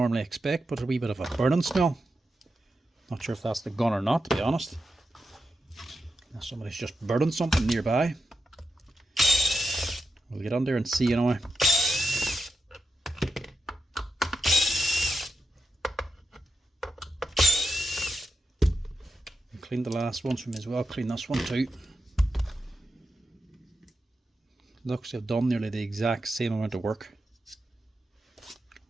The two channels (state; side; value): normal; both; correlation 0.88